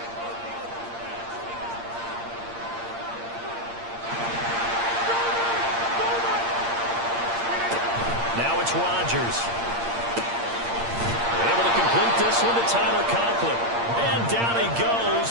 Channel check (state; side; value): late; left; 8.7 ms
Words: Now it's Rodgers. Able to complete this one to Tyler Conklin. And down he